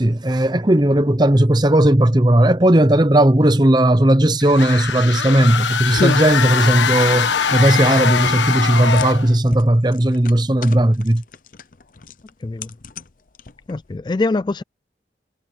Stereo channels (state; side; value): normal; both; correlation 0.76